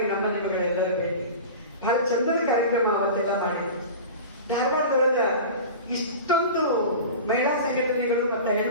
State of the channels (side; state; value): both; inverted; correlation -0.34